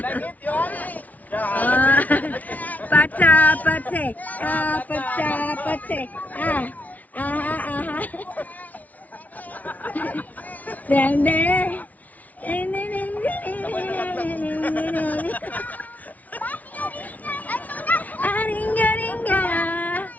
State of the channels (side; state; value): right; late; 0.073 ms